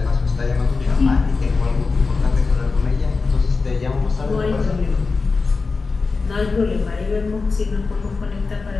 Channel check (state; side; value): quieter; right; 4.3 dB